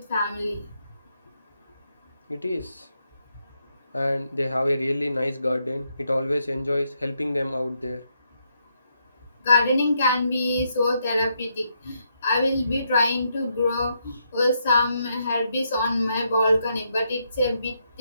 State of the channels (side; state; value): both; inverted; correlation -0.79